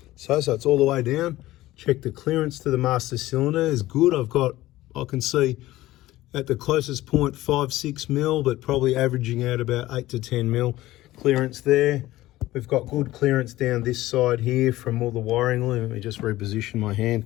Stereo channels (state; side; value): quieter; right; 16.4 dB